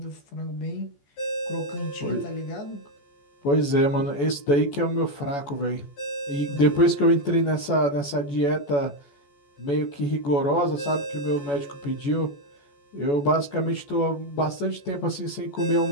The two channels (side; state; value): right; late; 14 ms